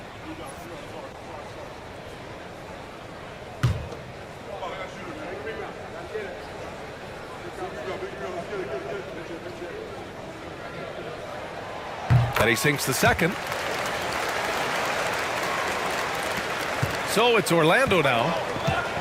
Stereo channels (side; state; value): both; identical; correlation 1.00